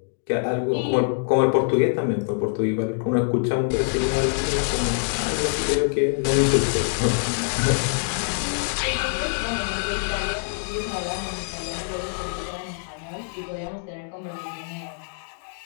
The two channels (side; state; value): right; silent; digital silence